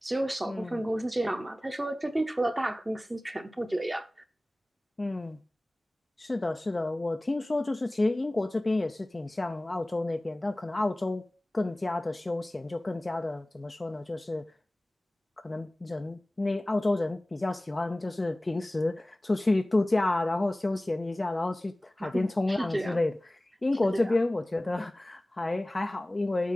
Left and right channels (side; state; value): both; normal; correlation 0.98